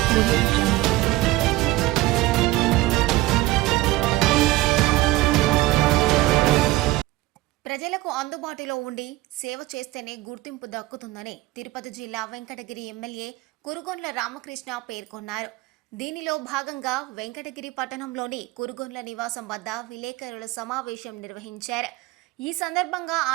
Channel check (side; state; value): left; quieter; 18.2 dB